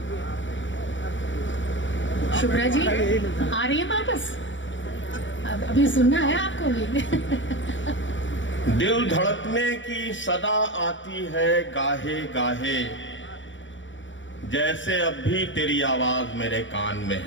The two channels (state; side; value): late; right; 0.55 ms